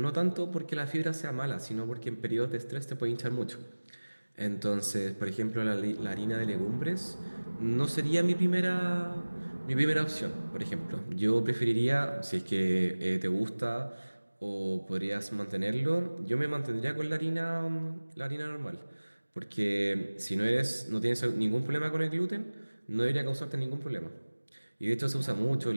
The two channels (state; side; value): inverted; both; correlation -1.00